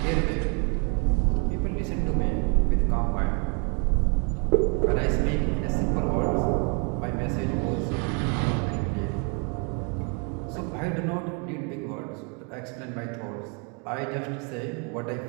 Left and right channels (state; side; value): quieter; left; 34.9 dB